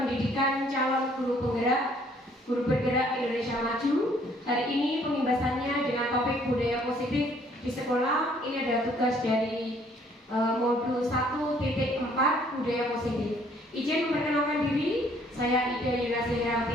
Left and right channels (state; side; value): normal; both; correlation 0.62